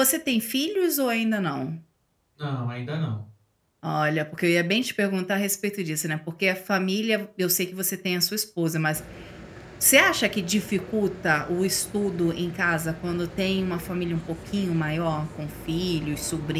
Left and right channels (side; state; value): both; identical; correlation 1.00